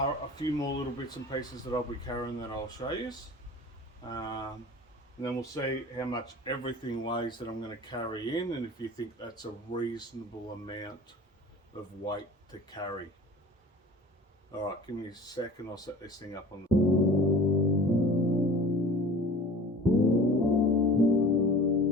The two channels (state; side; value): normal; both; correlation 0.41